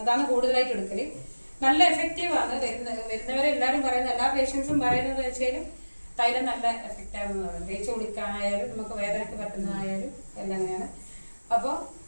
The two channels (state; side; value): inverted; both; correlation -1.00